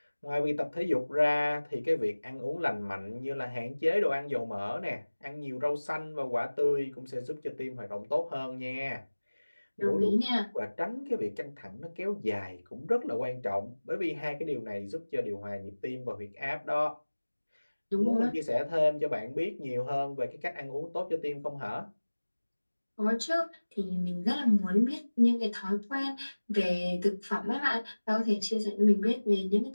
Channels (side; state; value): both; inverted; correlation -1.00